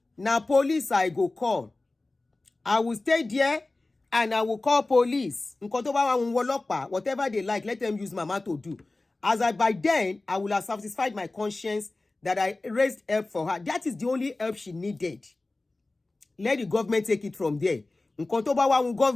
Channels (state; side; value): quieter; right; 3.1 dB